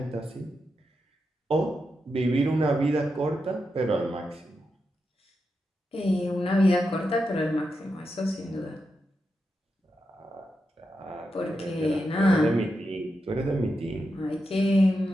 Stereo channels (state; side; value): normal; both; correlation 0.87